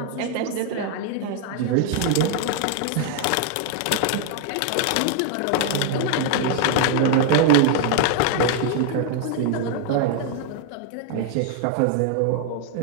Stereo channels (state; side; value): different; both; correlation 0.00